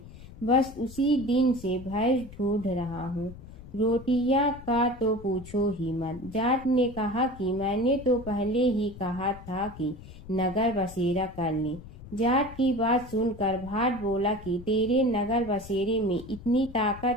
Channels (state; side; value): noise; left; rumble, 16 dB below the sound